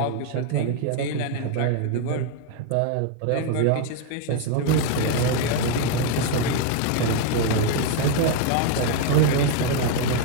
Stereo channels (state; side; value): different; both; correlation 0.00